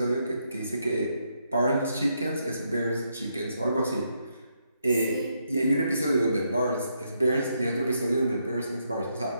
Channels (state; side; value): inverted; both; correlation -0.78